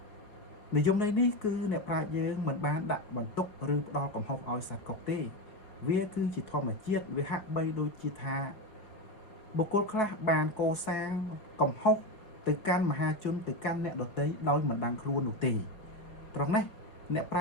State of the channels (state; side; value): late; right; 4.7 ms